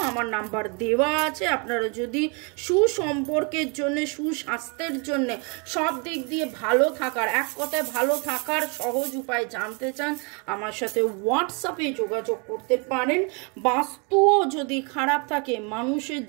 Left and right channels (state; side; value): quieter; left; 33.8 dB